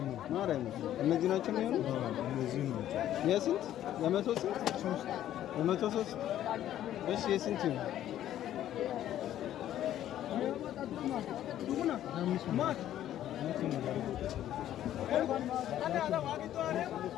ነው ማርያም። እነዚህ ናቸው የሚሆኑ እነዚህ ነው። የስንት የመቶ ስንት ሶስት የመቶ ሶስት እሺ የስንት ነው?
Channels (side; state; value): right; quieter; 12.0 dB